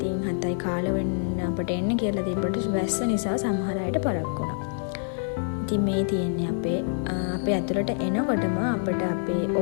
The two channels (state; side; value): silent; right; 55 dB below the other